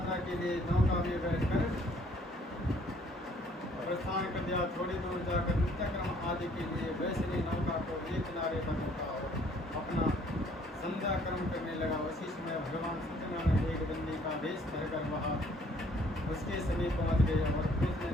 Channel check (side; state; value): both; normal; correlation 0.61